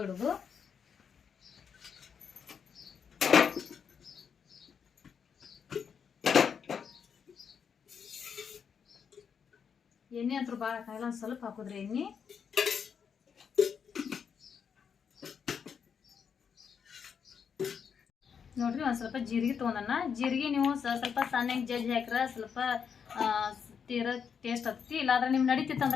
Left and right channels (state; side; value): quieter; right; 6.9 dB